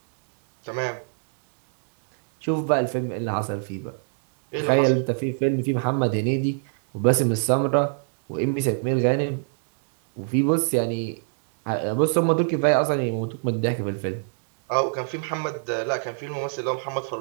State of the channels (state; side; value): silent; left; digital silence